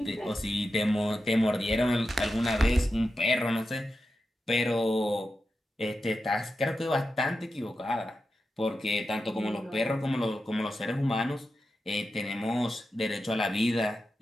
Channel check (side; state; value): both; normal; correlation 0.90